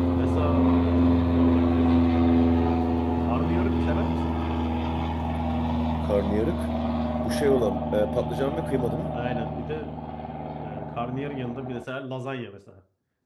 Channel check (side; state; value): both; identical; correlation 1.00